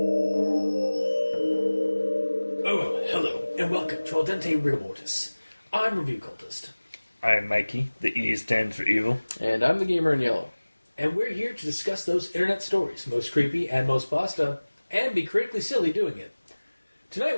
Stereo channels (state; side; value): inverted; both; correlation -1.00